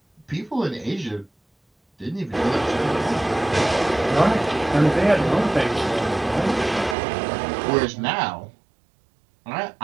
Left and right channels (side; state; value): left; drops out; at 7.0 s